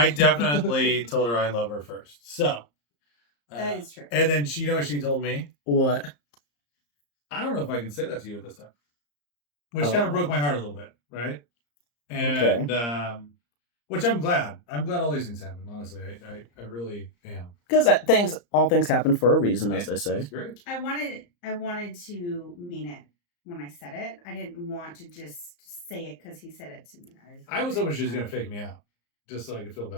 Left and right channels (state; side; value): late; right; 34 ms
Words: definitely told her I love her first. So That is true. And then she, what she told me? What? I don't know if I can say that to you at this time. Which kind of broke my heart a little bit, right? And which I'm glad. I'm glad all these things happen, honestly. I really am. Because all things happen for a reason, as they say. It's great. I wanted to mean it when I said it. I didn't want to just say it because he said it to me. I was hoping she was going to fake me out, just so I could feel